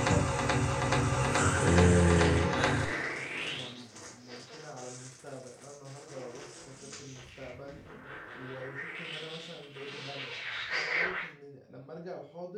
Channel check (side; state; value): both; identical; correlation 1.00